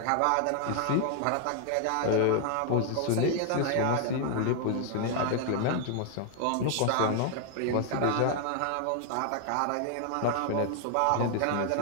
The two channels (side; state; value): both; different; correlation 0.00